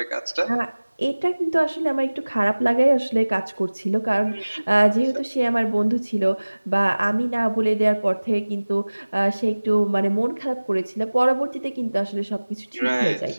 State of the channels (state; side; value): inverted; both; correlation -1.00